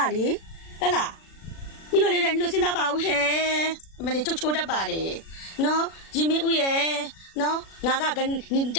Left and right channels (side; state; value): right; late; 36 ms